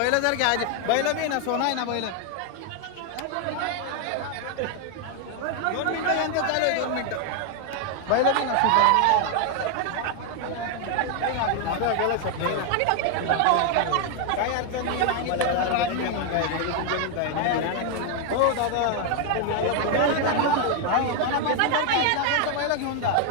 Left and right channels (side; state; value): both; different; correlation 0.01